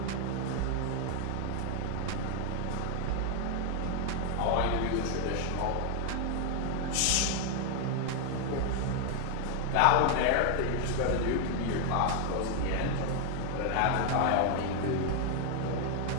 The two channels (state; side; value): different; both; correlation 0.00